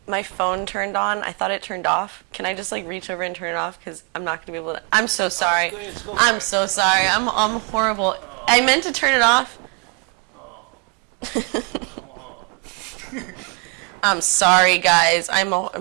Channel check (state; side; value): quieter; left; 33.7 dB